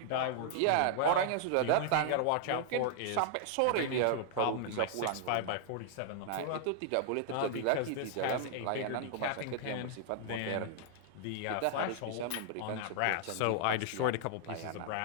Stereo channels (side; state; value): both; different; correlation -0.01